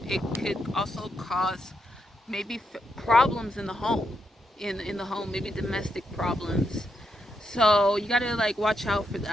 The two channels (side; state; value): both; normal; correlation 0.82